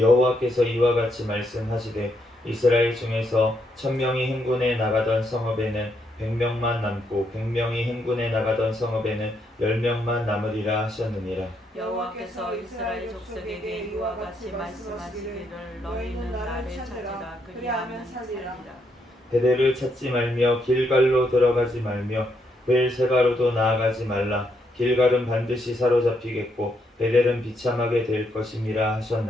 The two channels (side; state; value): both; normal; correlation 0.76